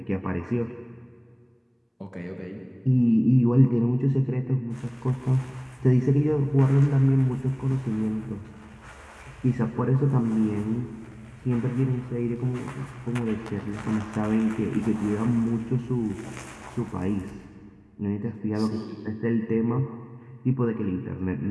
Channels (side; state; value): both; identical; correlation 1.00